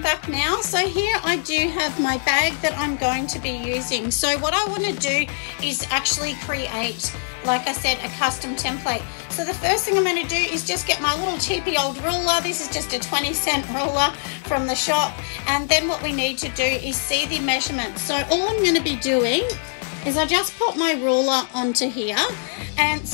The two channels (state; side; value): silent; right; digital silence